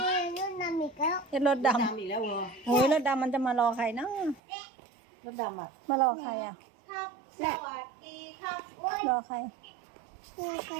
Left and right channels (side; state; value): left; drops out; at 4.4 s